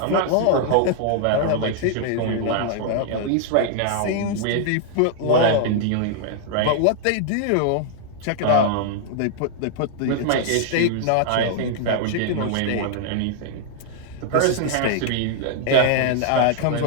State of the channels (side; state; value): both; different; correlation -0.01